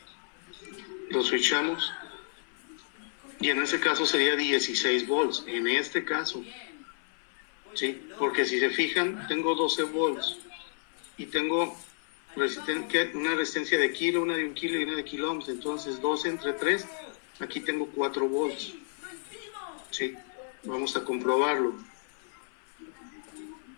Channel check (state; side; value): silent; right; 57 dB below the other